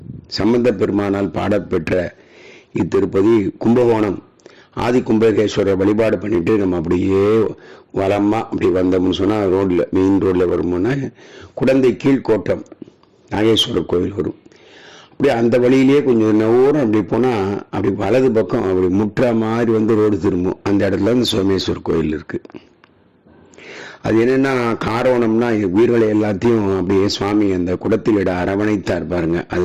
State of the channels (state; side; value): identical; both; correlation 1.00